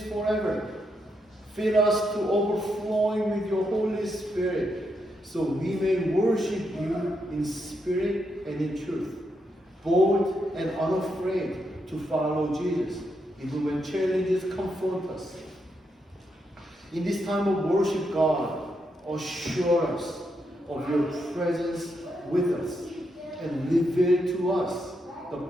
forever. Fill us to overflowing with your Holy Spirit, so we may worship you in spirit and in truth, bold and unafraid to follow Jesus, even when challenges confront us. In this time of worship, God, assure us of your presence with us and reveal to us the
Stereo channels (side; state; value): both; normal; correlation 0.81